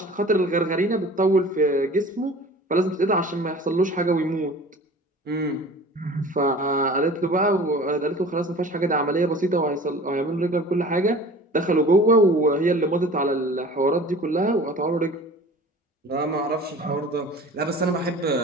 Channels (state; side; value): normal; both; correlation 0.42